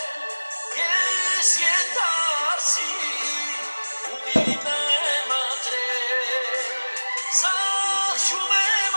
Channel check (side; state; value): both; inverted; correlation -1.00